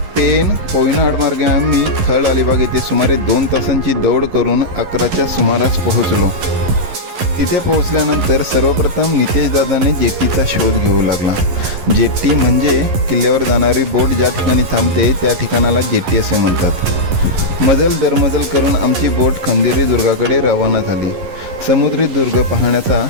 पेन कोयना आडमार्गे आम्ही थळ अलिबाग येथे सुमारे 2 तासांची दौड करून 11च्या सुमारास पोहोचलो. तिथे पोहोचल्यानंतर सर्वप्रथम नितेश दादाने जेट्टीचा शोध घेऊ लागला. जेट्टी म्हणजे किल्ल्यावर जाणारी बोट ज्या ठिकाणी थांबते त्या ठिकाणाला जेट्टी असे म्हणतात. मजल दरमजल करून आमची बोट खंदेरी दुर्गाकडे रवाना झाली. समुद्री दुर्ग पाहण्याचा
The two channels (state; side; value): late; left; 11 ms